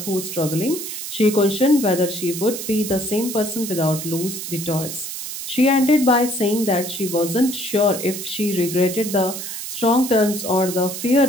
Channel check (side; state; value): right; noise; hiss, 7 dB below the sound